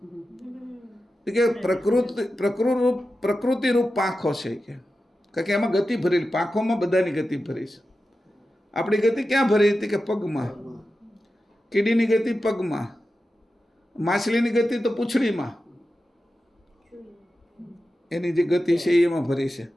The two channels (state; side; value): normal; both; correlation 0.92